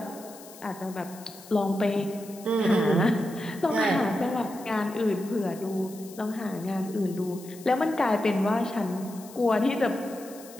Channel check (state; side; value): noise; left; hiss, 19 dB below the sound